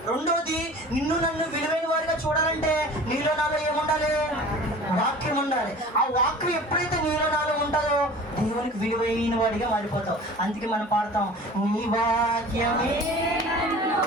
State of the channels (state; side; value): normal; both; correlation 0.42